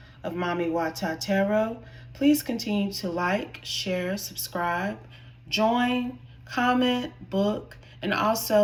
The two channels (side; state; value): both; identical; correlation 1.00